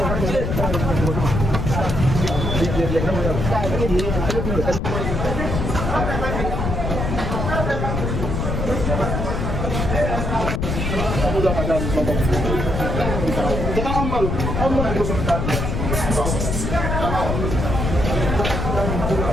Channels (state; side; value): noise; left; rumble, 2 dB below the sound